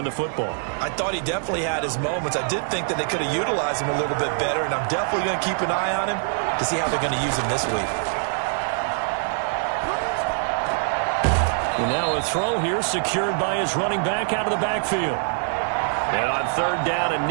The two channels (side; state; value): left; silent; digital silence